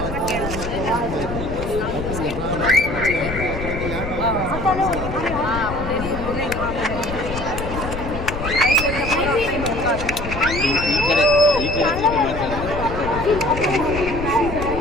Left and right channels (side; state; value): left; noise; rumble, 7 dB below the sound